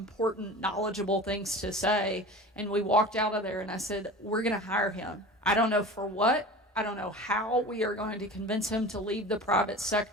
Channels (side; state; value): both; normal; correlation 0.36